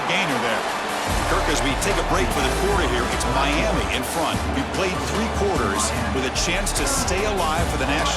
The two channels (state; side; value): identical; both; correlation 1.00